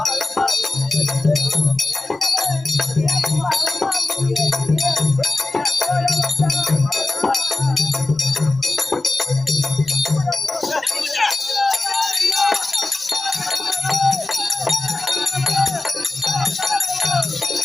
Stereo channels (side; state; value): right; quieter; 3.1 dB